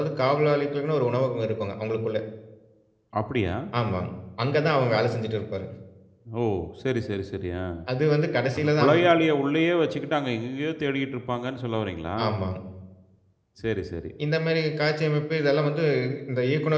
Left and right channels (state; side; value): identical; both; correlation 1.00